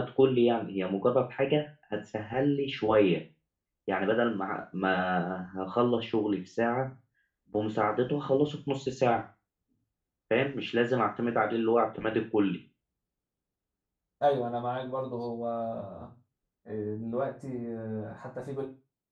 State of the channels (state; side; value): identical; both; correlation 1.00